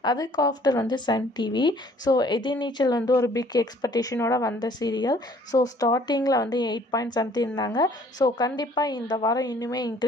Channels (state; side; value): normal; both; correlation 0.57